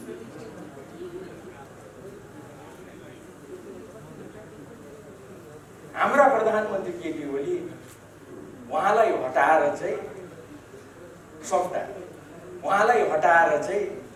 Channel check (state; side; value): identical; both; correlation 1.00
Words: हाम्रा प्रधानमन्त्री केपी ओली उहाँलाई हटाएर चाहिँ सक्दा उहाँलाई हटाएर चाहिँ